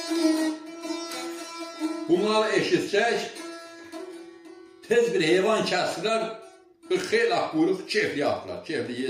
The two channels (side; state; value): both; identical; correlation 1.00